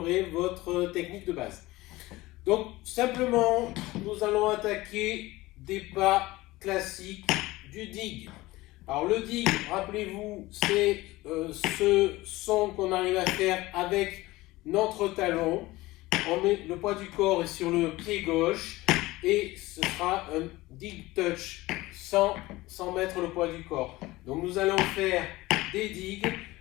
votre technique de base. Donc simplement, nous allons attaquer des pas classiques du dig. Alors le dig, rappelez-vous, c'est ce son qu'on arrive à faire avec notre talon. On met le poids du corps est sur le pied gauche et ce sera un dig touch sans mettre le poids du corps. Donc nous allons faire des digues.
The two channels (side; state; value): right; quieter; 19.3 dB